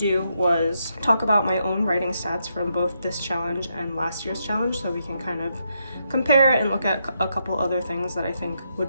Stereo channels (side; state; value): both; inverted; correlation -0.80